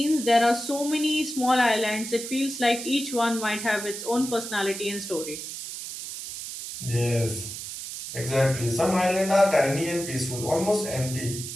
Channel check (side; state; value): right; noise; hiss, 8 dB below the sound